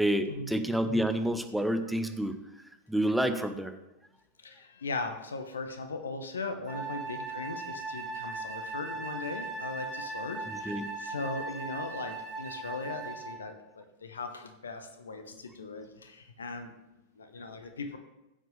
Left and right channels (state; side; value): normal; both; correlation 0.48